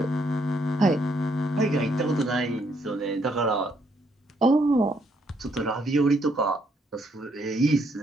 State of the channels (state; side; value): normal; both; correlation 0.72